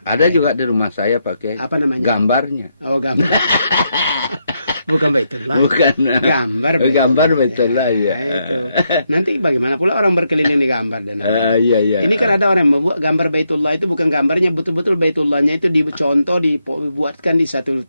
Ada juga di rumah saya pakai Apa namanya? gambarnya. Oh, gambar. Bukan Baitullah. Bukan. Gambar Gambar Baitullah, ya. Itu. Nanti bagaimana pula orang berkeliling di gambar dan apa? Iya, iya. Ini kan ada orang yang membuat gambar Baitullah itu bukan gambarnya, betul-betul Baitullahnya itu dicontoh, dibuatkan di satu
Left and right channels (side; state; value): both; inverted; correlation -0.80